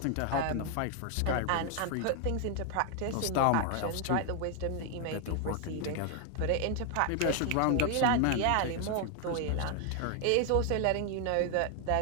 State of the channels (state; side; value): different; both; correlation 0.00